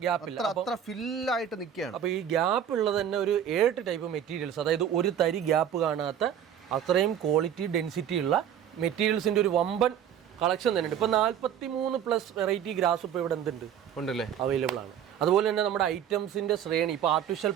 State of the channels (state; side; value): quieter; left; 9.4 dB